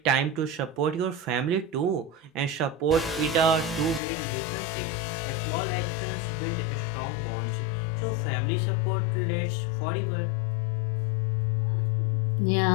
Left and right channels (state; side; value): drops out; right; at 4.0 s